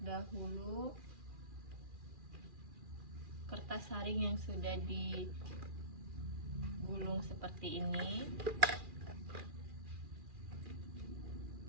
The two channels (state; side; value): late; left; 2.4 ms